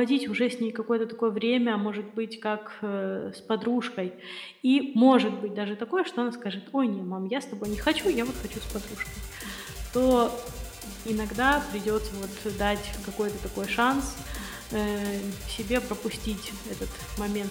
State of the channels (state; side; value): identical; both; correlation 1.00